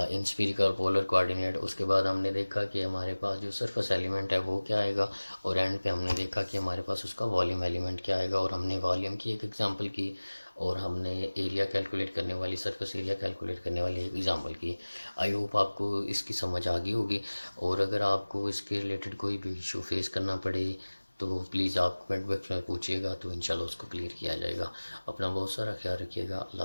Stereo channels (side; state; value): both; inverted; correlation -1.00